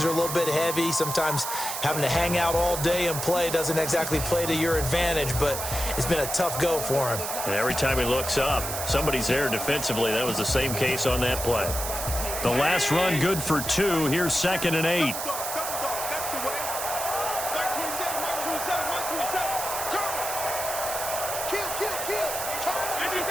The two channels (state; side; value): noise; right; hiss, 4 dB below the sound